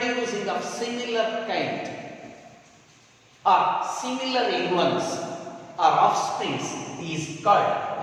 of similar kind or similar influence or offsprings is called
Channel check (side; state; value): both; identical; correlation 1.00